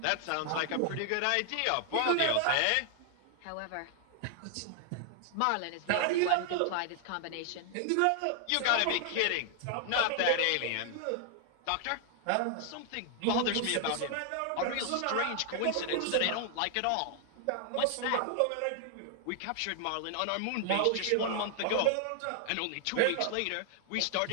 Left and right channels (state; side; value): different; both; correlation 0.00